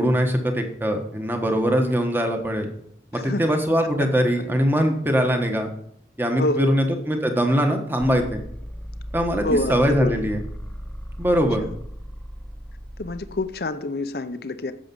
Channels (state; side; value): normal; both; correlation 0.76